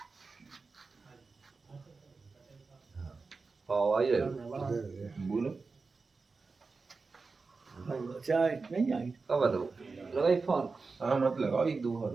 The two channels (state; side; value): quieter; left; 4.3 dB